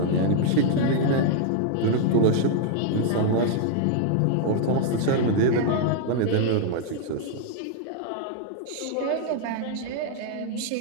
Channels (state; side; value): different; both; correlation 0.00